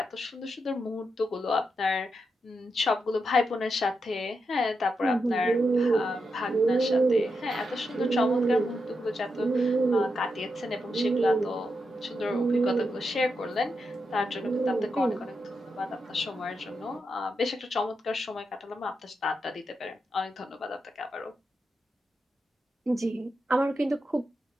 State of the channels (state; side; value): normal; both; correlation 0.85